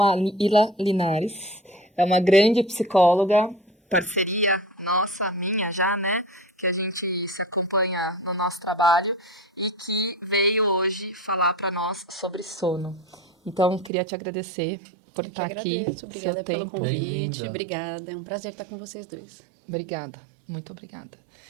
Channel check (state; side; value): drops out; left; at 13.9 s